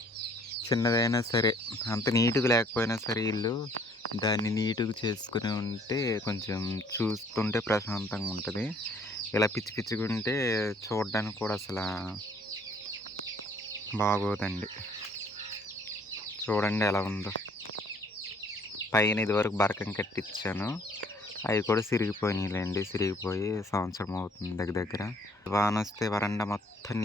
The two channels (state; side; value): normal; both; correlation 0.59